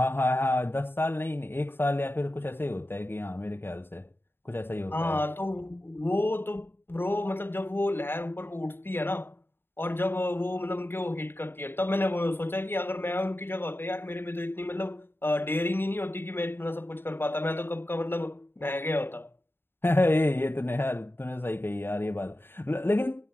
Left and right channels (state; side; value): late; right; 0.10 ms